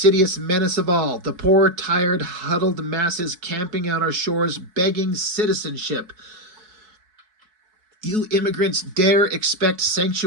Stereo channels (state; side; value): late; left; 4.6 ms